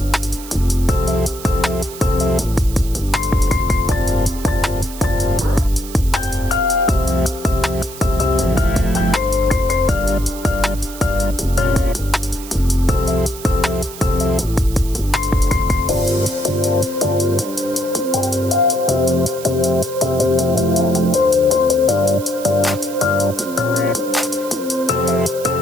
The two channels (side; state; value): right; noise; hiss, 15 dB below the sound